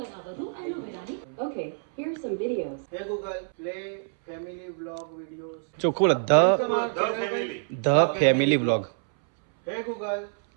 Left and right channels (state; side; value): silent; left; 60 dB below the other